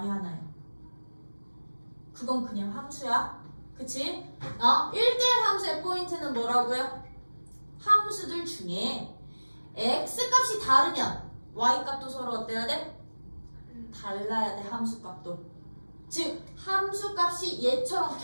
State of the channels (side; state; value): both; inverted; correlation -1.00